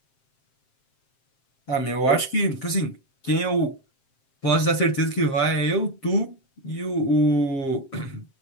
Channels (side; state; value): right; late; 7.5 ms